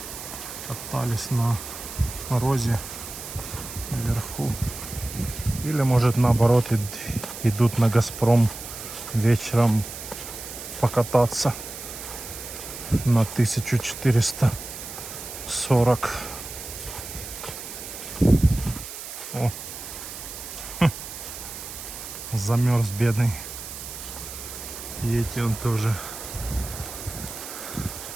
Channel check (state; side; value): noise; right; hiss, 10 dB below the sound